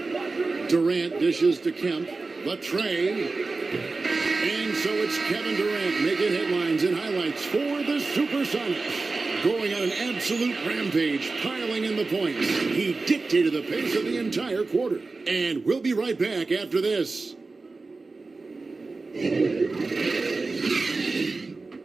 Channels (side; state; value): left; quieter; 3.7 dB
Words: Durant dishes to Kemp. The tray. And so it's Kevin Durant making headlines and highlights for the Supersonics. Going on an absolute rampage, piling in the points. He dictated the pace of the entire quarter. And we'll be right back after this.